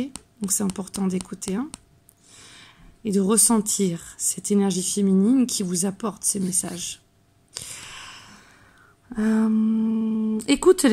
Donc, c'est important d'écouter. Hein, et de ressentir cette énergie féminine qui vous apporte ces messages. Écoute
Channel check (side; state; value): both; identical; correlation 1.00